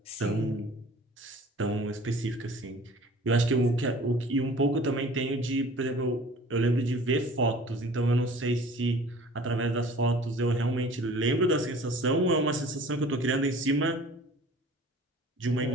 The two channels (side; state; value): both; normal; correlation 0.47